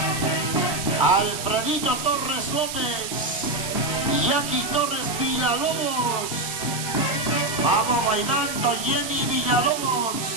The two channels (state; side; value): noise; right; hiss, 6 dB below the sound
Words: Alfredito Torres López. Jackie Torres Villalobos. Vamos bailando, Jenny Villalobos.